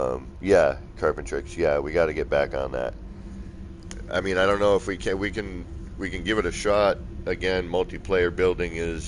Yeah, Carpentrix. Yeah, we got to get back on that. I mean, I don't know if we can give it a shot again. Multiplayer building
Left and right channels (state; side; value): identical; both; correlation 1.00